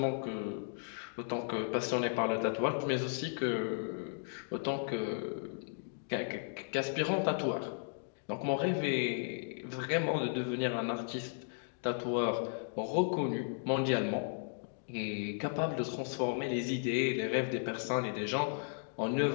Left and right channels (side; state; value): right; silent; digital silence